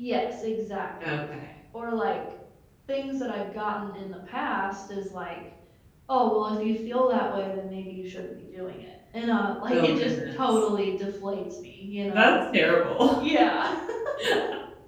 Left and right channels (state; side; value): identical; both; correlation 1.00